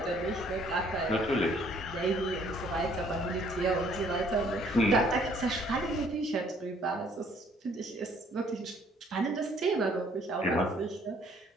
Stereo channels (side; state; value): both; normal; correlation 0.62